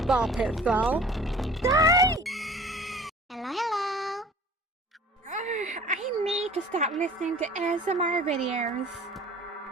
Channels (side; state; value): both; normal; correlation 0.46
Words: ball pit fall. Die! Hello. I need to stop listening to ASMR videos.